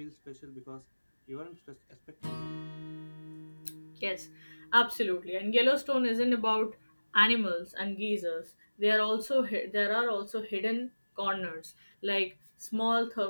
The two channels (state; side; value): inverted; both; correlation -1.00